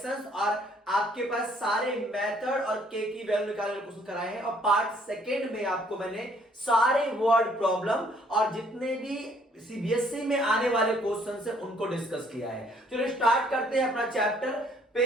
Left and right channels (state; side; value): normal; both; correlation 0.63